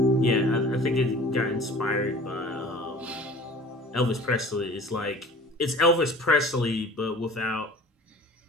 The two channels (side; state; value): both; normal; correlation 0.44